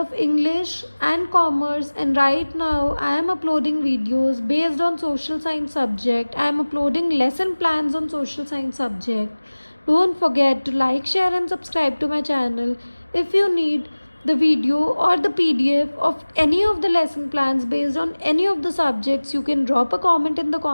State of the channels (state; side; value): inverted; both; correlation -1.00